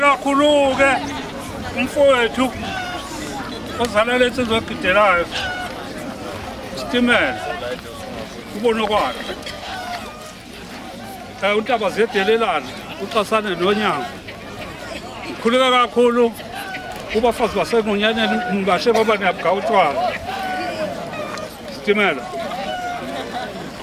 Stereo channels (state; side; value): identical; both; correlation 1.00